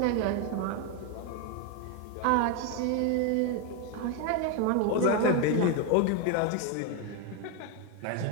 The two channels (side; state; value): both; different; correlation 0.02